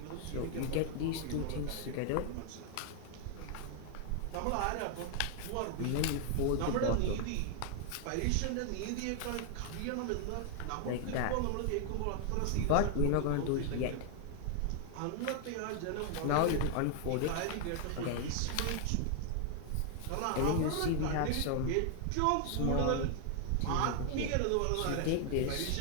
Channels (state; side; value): different; both; correlation 0.00